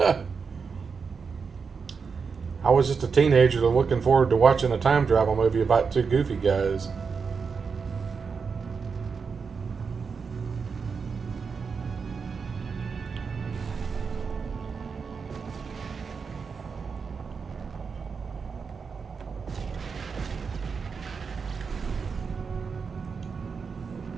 I was just a teenager looking forward to watching a time travel movie about two goofy guys.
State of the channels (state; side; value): quieter; left; 5.5 dB